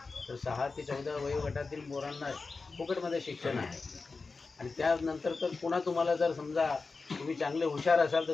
तर 6 ते 14 वयोगटातील पोरांना फुकटमध्ये शिक्षण आहे आणि त्यानंतर तर पुन्हा तुम्हाला जर समजा तुम्ही चांगले हुशार असाल तर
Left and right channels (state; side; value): quieter; right; 4.1 dB